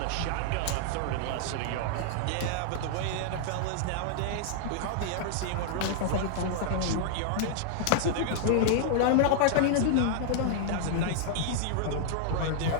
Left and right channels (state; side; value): different; both; correlation -0.01